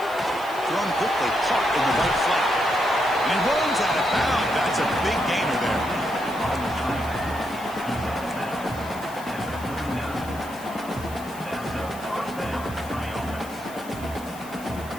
Thrown quickly, caught in the right flat. And he runs out of bounds. That's a big gainer there.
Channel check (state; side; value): noise; left; hiss, 18 dB below the sound